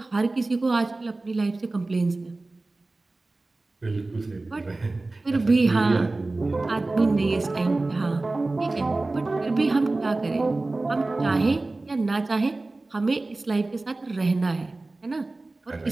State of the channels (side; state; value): left; quieter; 3.1 dB